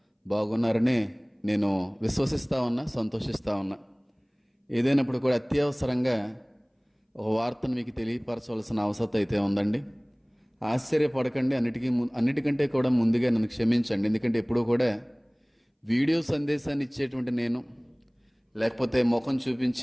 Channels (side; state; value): both; identical; correlation 1.00